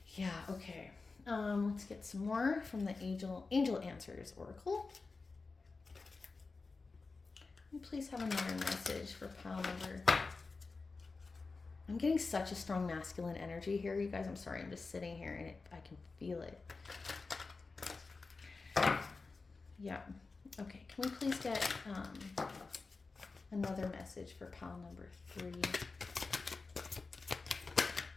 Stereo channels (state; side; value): quieter; right; 4.0 dB